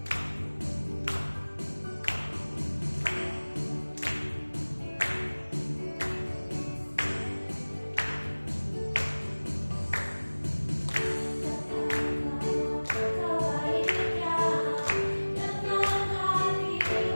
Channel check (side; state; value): both; inverted; correlation -1.00